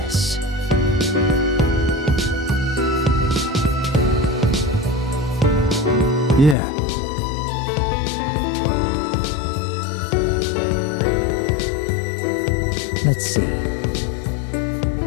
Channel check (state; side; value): drops out; right; at 6.6 s